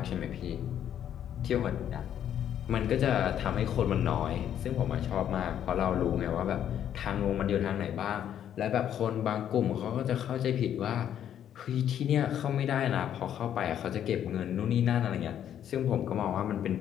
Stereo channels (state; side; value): quieter; right; 10.0 dB